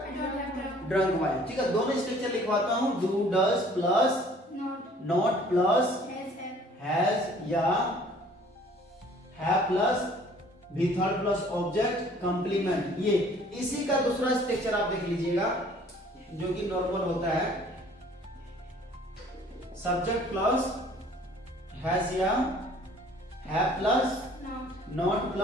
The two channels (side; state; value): both; normal; correlation 0.54